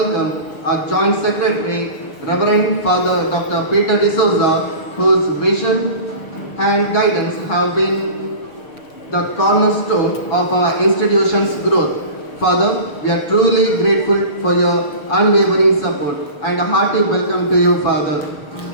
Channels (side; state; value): right; late; 6.6 ms